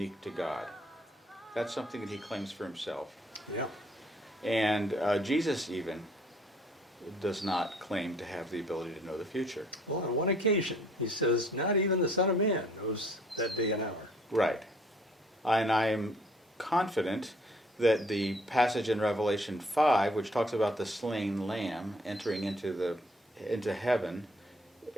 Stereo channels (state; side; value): normal; both; correlation 0.59